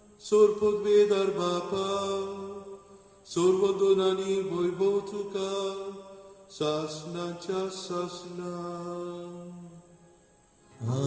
सोर पदवेदार बापा सर्व दोनांनी वैभव तुका सासनाच्या सासना.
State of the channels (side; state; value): both; identical; correlation 1.00